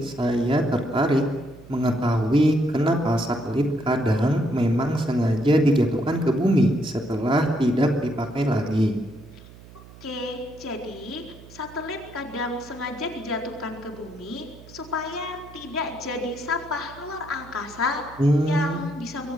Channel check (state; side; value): noise; right; hum, 20 dB below the sound